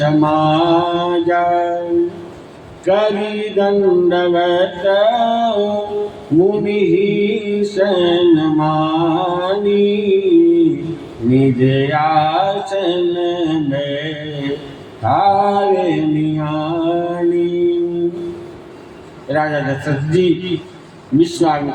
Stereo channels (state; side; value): identical; both; correlation 1.00